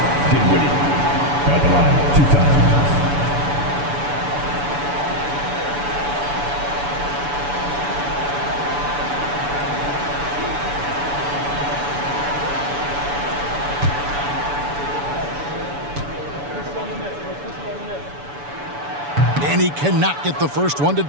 Dinwiddie. At the line, 2 times. And he cannot get the first one to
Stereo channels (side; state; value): left; late; 7.0 ms